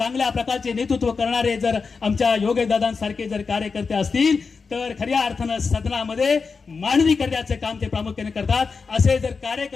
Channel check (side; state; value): right; quieter; 4.9 dB